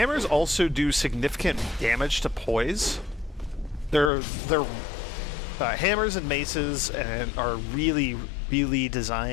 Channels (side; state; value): right; drops out; at 4.1 s